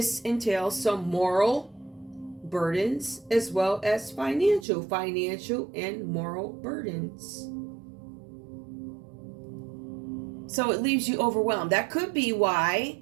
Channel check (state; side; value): drops out; left; at 4.7 s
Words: entails some moral burdens as well as financial and moral burdens. So it leaves you overwhelmed. That could be why